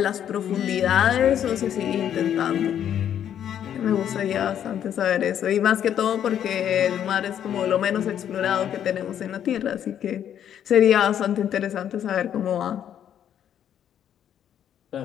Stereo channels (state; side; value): quieter; right; 9.8 dB